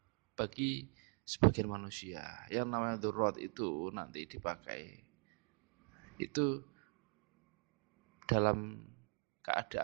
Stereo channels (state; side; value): quieter; left; 39.6 dB